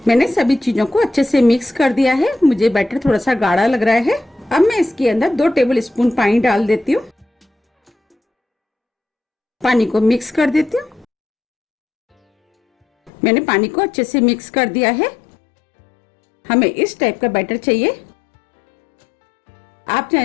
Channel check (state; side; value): drops out; right; at 13.1 s